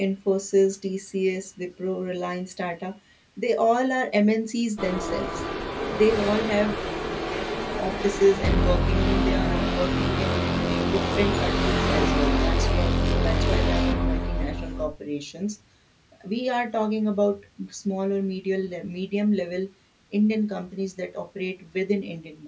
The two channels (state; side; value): identical; both; correlation 1.00